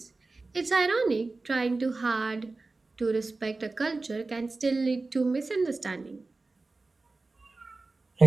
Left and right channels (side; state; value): left; quieter; 3.5 dB